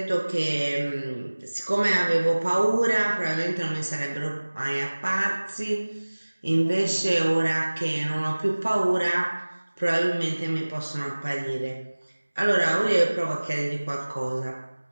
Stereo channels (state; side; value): inverted; both; correlation -1.00